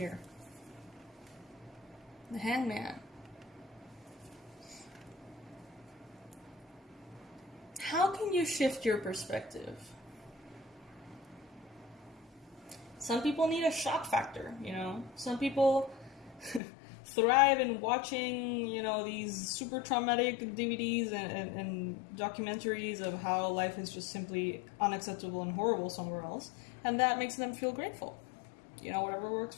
The hangman. How can you shift your perspective? Some people need a shock factor, you know. Some people thrive in watching, you know, these super traumatic DVDs and documentaries of how life is just simply unacceptable and horrible somewhere else. And that makes them feel grateful. You know, whatever works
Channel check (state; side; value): drops out; right; at 16.6 s